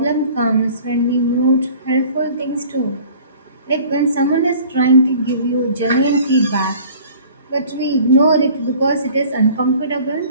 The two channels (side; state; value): both; inverted; correlation -0.48